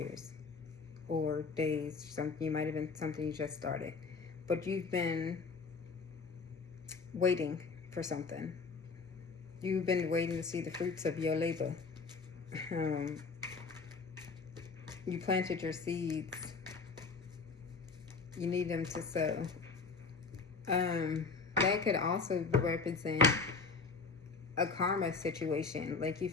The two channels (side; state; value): right; quieter; 4.6 dB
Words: or days. Something, you might have been something you just started, but you've been waiting for something. You've been waiting to see the fruits of your labor. You planted your seeds. You need them to sow. That could also represent a karma situation. Like, you